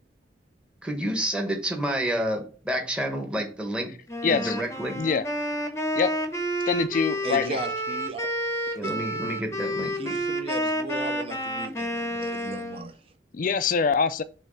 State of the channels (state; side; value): normal; both; correlation 0.29